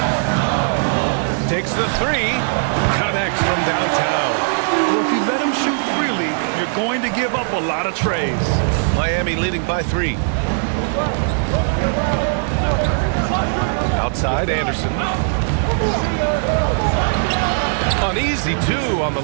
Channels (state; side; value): silent; left; digital silence